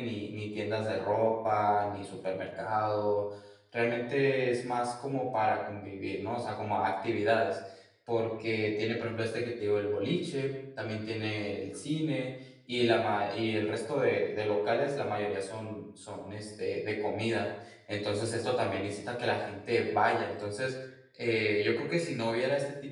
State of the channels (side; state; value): both; identical; correlation 1.00